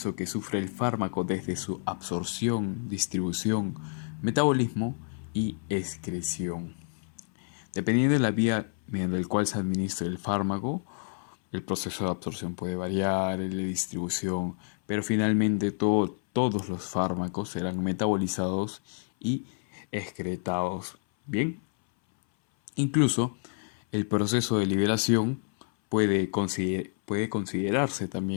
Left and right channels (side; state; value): right; silent; 58 dB below the other